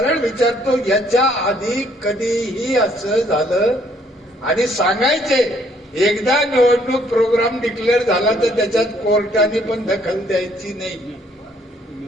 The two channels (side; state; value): both; normal; correlation 0.65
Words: विचारतो, याच्या आधी कधीही असं झालं? आणि सांगायचे, एकदा निवडणूक प्रोग्राम डिक्लेअर झाला तर त्याच्यात कोर्टाने पण दखल द्यायची नाही.